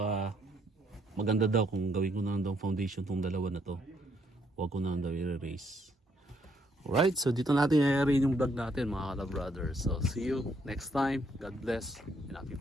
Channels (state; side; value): normal; both; correlation 0.71